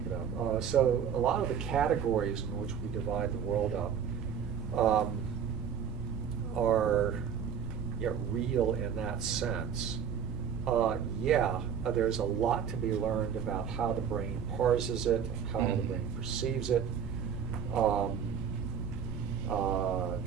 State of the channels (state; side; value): quieter; left; 7.7 dB